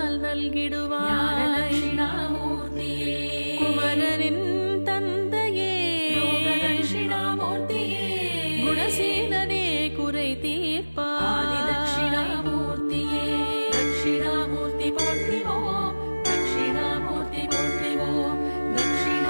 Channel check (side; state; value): both; inverted; correlation -1.00